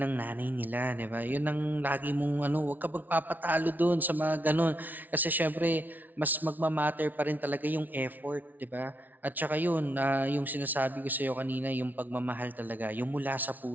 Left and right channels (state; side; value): late; left; 0.081 ms